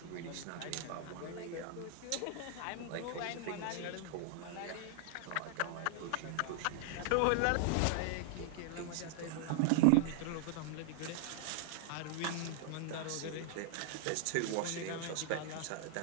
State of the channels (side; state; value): both; different; correlation 0.00